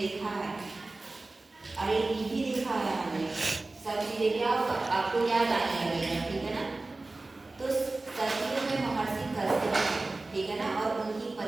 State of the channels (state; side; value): quieter; left; 3.2 dB